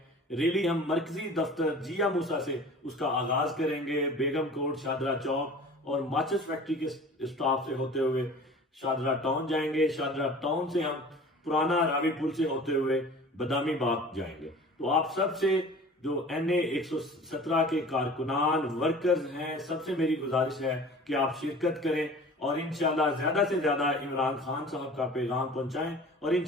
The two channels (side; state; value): both; normal; correlation 0.42